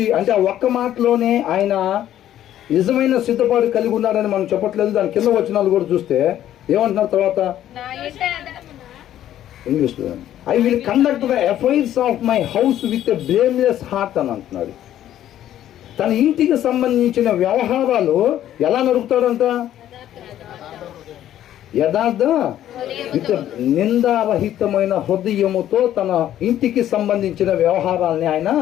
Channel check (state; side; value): quieter; right; 11.9 dB